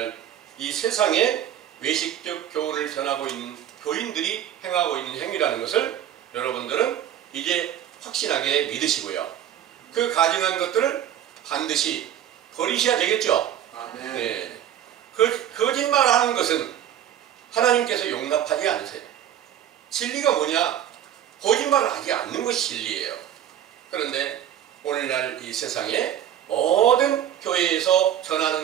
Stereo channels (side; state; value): left; quieter; 10.7 dB